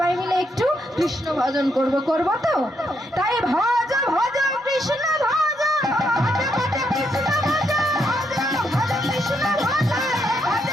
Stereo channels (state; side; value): normal; both; correlation 0.77